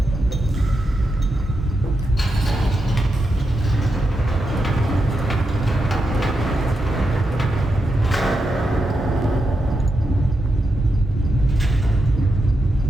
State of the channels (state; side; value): normal; both; correlation 0.86